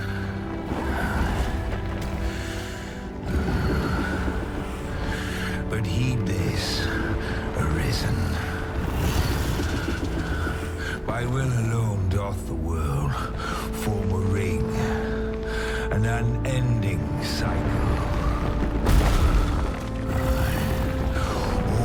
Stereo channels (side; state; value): both; identical; correlation 1.00